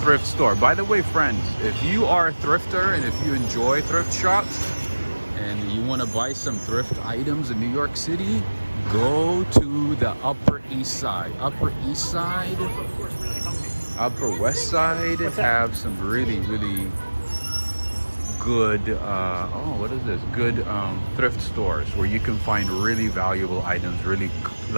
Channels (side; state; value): both; inverted; correlation -1.00